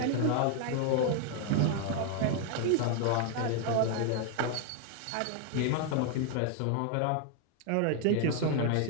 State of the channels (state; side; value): different; both; correlation 0.00